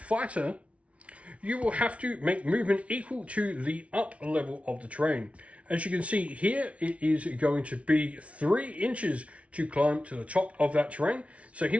You will have to make movement equal to the up level of the terrain. As you can see here, it is going to be 3 inches to climb to the top of that terrain. So he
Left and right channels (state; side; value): late; left; 0.063 ms